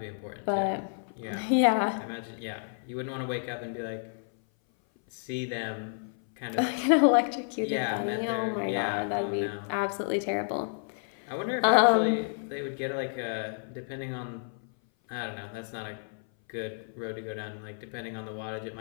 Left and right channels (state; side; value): silent; right; 56 dB below the other